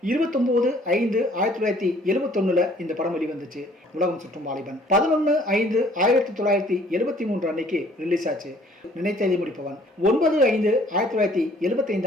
29/5/1971 இந்த படம் வெளிவந்துச்சு. உலகம் சுற்றும் வாலிபன் 11/5/1973 அன்னைக்கு ரிலீஸ் ஆச்சு. நினைத்ததை முடிப்பவன்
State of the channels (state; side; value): normal; both; correlation 0.58